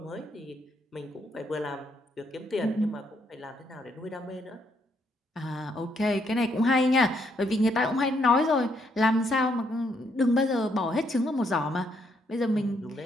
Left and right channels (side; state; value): both; normal; correlation 0.74